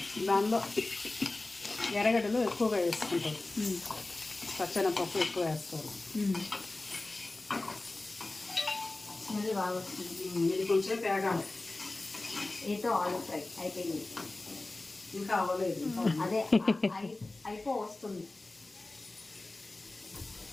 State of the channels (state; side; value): quieter; right; 3.0 dB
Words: దానిలో ఎర్రగడ్డలు ఎక్కువగా వేసుకుంటారు. పచ్చెనపప్పు ఎక్కువ వేస్తారు. స్మెల్ బాగా వస్తుంది. ఇది కొంచెం తేగాలి. ఏతో ఆలు ఫ్రై అయిపోయింది. ఇంకా అవ్వలేదు. అదే అయిపో వస్తుంది.